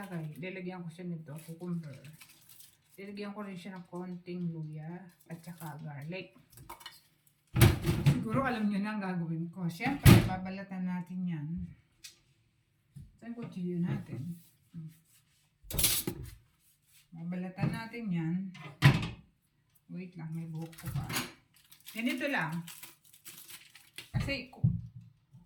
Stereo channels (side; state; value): both; identical; correlation 1.00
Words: Diligyan ko siya nito, cucumber. Diligyan ko rin siya ng konting luya at saka garlic. Siguro alam nyo na ang gagawin ko. Siyempre, babalatan natin yan. Saan kutsilyo natin? Babalatan natin yan. Wait lang, may buhok ko pa. Ganito lang. Kasi